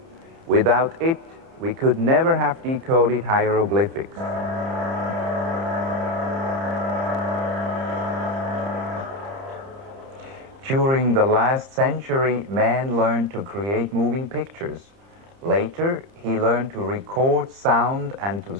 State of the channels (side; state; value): left; late; 30 ms